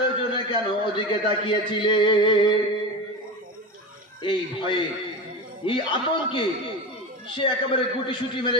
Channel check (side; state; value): both; normal; correlation 0.24